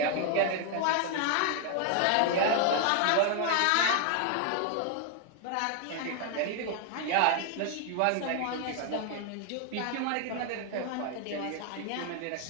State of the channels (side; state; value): both; different; correlation 0.00